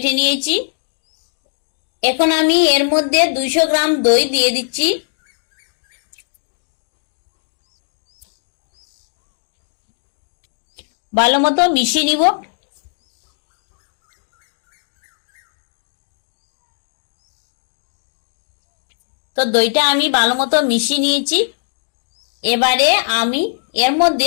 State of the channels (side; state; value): right; silent; digital silence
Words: নিয়েছি। এখন আমি এর মধ্যে 200 গ্রাম দই দিয়ে দিচ্ছি। ভালো মতো মিশিয়ে নিব। তো দইটা আমি ভালো মতো মিশিয়ে নিয়েছি। এবারে আমি এর